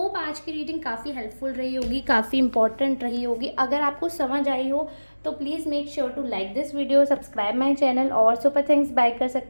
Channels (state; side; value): inverted; both; correlation -1.00